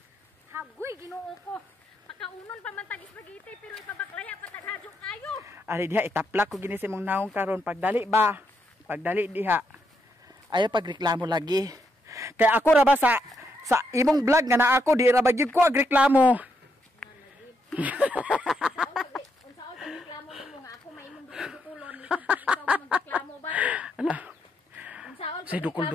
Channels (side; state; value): both; normal; correlation 0.79